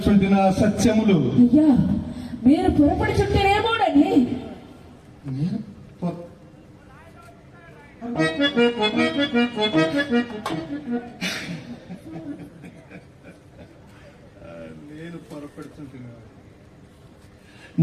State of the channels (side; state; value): both; identical; correlation 1.00